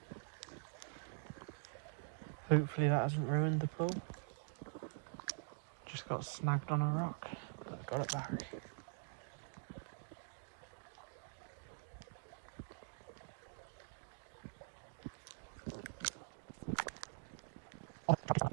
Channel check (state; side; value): silent; left; digital silence